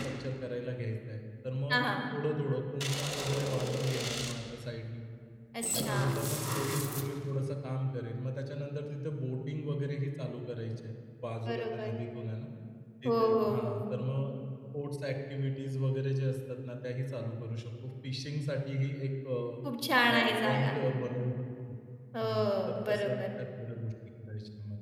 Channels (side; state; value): both; identical; correlation 1.00